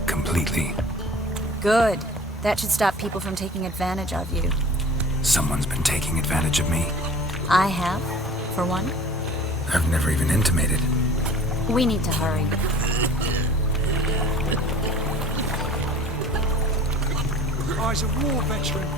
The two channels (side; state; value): both; normal; correlation 0.45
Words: completely. Good. That should stop people from taking advantage of you. Someone's been taking advantage of me. I have, for one. I've never even intimated. We need to hurry. I's a war veteran.